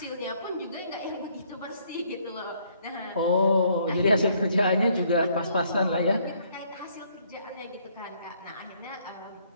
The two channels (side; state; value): both; inverted; correlation -0.66